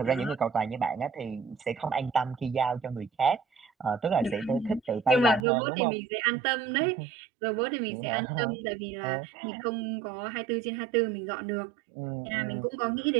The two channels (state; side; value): drops out; left; at 5.5 s